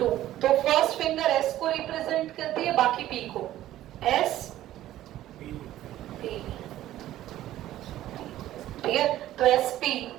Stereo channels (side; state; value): left; quieter; 13.8 dB